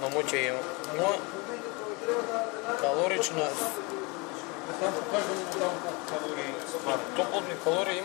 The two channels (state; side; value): quieter; right; 28.0 dB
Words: на моча има. Но калорична. Топлотни калории